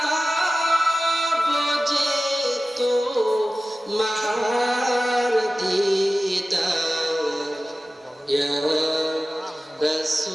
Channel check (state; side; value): normal; both; correlation 0.95